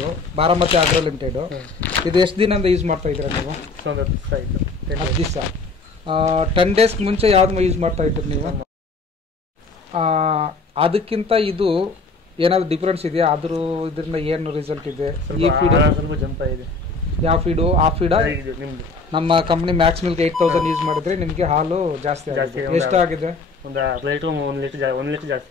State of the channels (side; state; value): right; quieter; 3.8 dB